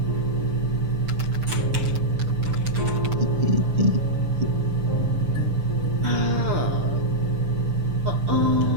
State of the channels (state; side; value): late; left; 6.8 ms